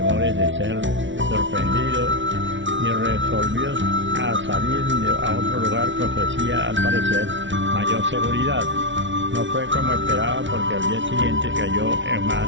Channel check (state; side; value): late; left; 0.55 ms